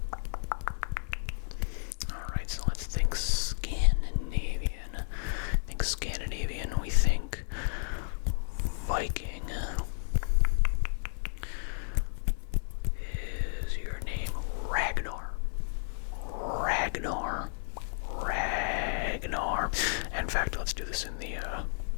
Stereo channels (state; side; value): silent; right; digital silence